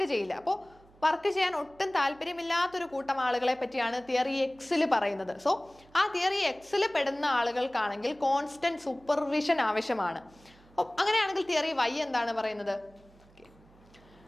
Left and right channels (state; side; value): noise; right; hum, 27 dB below the sound